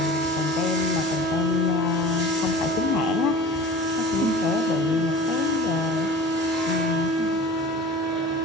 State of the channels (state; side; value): normal; both; correlation 0.39